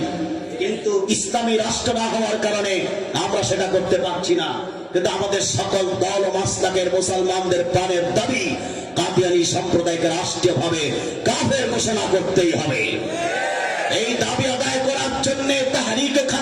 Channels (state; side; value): identical; both; correlation 1.00